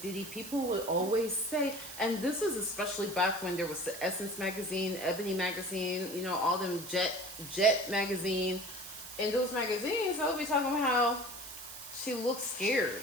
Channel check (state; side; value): noise; right; hiss, 11 dB below the sound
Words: Diddy. People would always say, and this is especially back when there was the Essence magazine, Ebony magazine, you know, all them Jet magazine. In those magazines, I would be talking about how she looks scared.